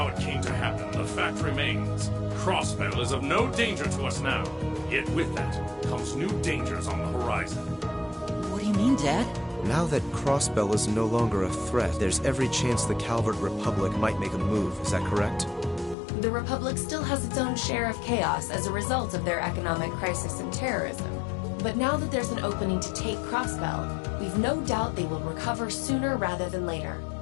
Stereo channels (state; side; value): drops out; right; at 16.0 s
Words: it came to happen, the fact remains. Crossbell is of no danger to us now. Yet with that comes new dangers on the horizon. What do you mean, Dad? Now that Crossbell is no longer a threat, there's every chance the Calvert Republic might make a move. Is that correct? The Republic still has its own share of chaos as a result of their economic crisis and terrorism. But now that there's an opening to take Crossbell, we've no doubt they will recover sooner rather than later.